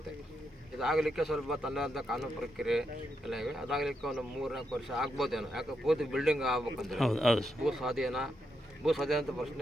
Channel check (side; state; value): both; normal; correlation 0.82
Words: ಇದಾಗಲಿಕ್ಕೆ ಸ್ವಲ್ಪ ತನ್ನದಂಥ ಕಾನೂನು ಪ್ರಕ್ರಿಯೆ ಎಲ್ಲ ಇವೆ. ಅದಾಗಲಿಕ್ಕೆ ಒಂದು 3-4 ವರ್ಷ ಆಗ್ಬೋದೇನೋ. ಯಾಕೆ ಪೂರ್ತಿ ಬಿಲ್ಡಿಂಗ್ ಆಗ್ಬೇಕಂದ್ರೆ ಭೂ ಸ್ವಾಧೀನ ಅಂತ